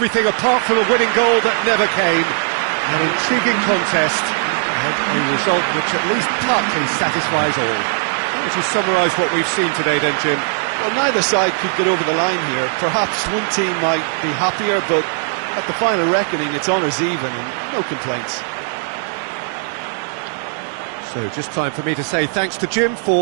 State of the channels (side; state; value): left; silent; digital silence